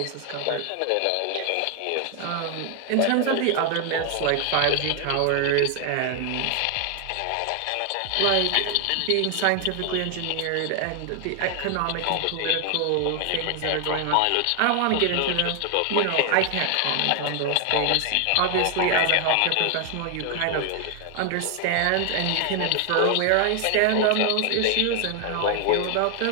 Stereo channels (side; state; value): both; different; correlation 0.00